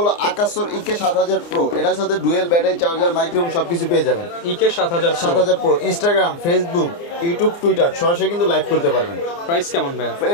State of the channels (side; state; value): right; late; 29 ms